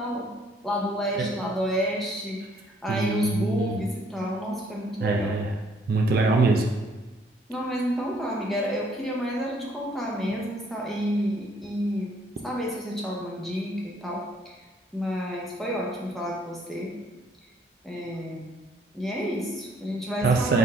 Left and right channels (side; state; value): both; normal; correlation 0.64